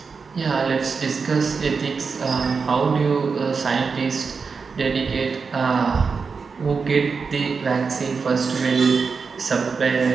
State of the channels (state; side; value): quieter; left; 5.1 dB